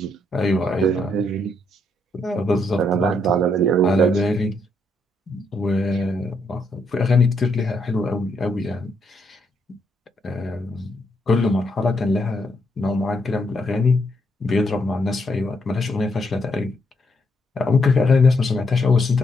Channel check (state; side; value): normal; both; correlation 0.76